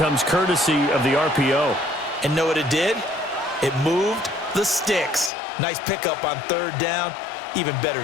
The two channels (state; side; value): drops out; right; at 5.3 s